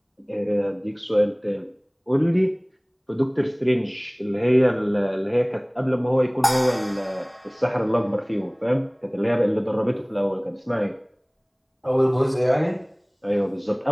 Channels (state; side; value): identical; both; correlation 1.00